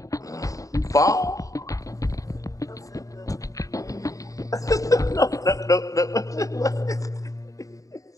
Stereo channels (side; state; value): right; late; 0.16 ms